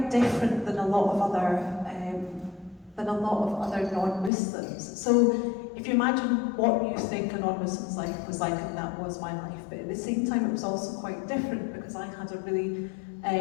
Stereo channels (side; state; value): right; drops out; at 4.3 s